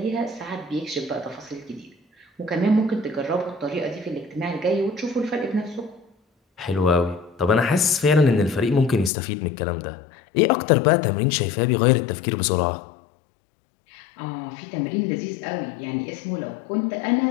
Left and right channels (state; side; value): drops out; right; at 9.1 s